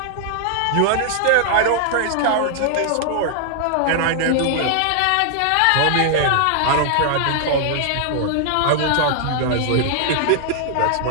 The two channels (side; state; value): both; different; correlation 0.00